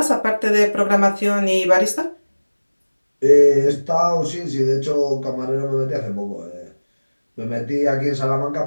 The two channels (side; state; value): both; inverted; correlation -1.00